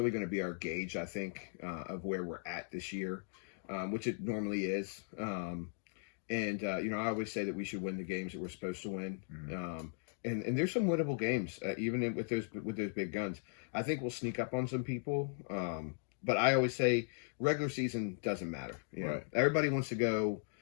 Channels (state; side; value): silent; right; digital silence